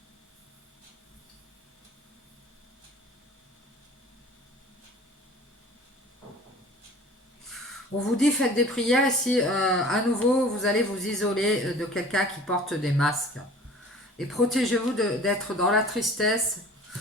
On vous dit faites des prières ici, à nouveau vous allez vous isoler de quelqu'un qui porte des masques. Et protégez-vous d'être dans la tristesse,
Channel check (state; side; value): normal; both; correlation 0.45